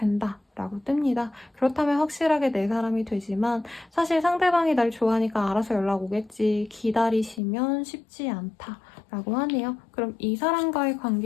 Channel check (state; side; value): drops out; right; at 7.4 s